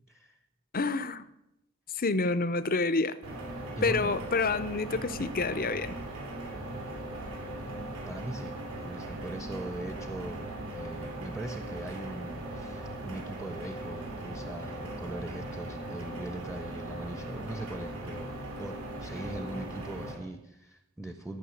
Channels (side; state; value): both; normal; correlation 0.33